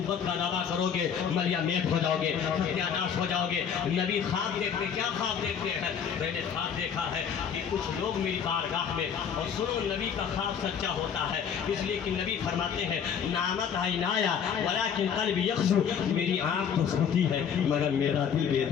का दावा करोगे मलिया मेट हो जाओगे, सत्यानाश हो जाओगे। नबी ख्वाब देखते, क्या ख्वाब देखते हैं? मैंने ख्वाब देखा है कि कुछ लोग मेरी बारगाह में, और सुनो नबी का ख्वाब सच्चा होता है, इसलिए कि नबी फरमाते हैं नामत आइनाया वलाकिन क़ल्बी यख्शू, मेरी आँख तो सोती है मगर मेरा दिल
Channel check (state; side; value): quieter; right; 7.6 dB